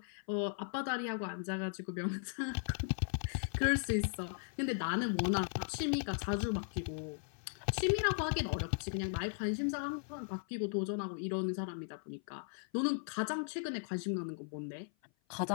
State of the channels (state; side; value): silent; right; 53 dB below the other